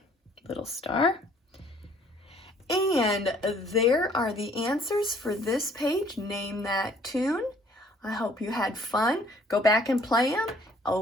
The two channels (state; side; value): normal; both; correlation 0.59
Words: little star. And there are the answers for this page. Name that tune. I hope you had fun. Go back and play them.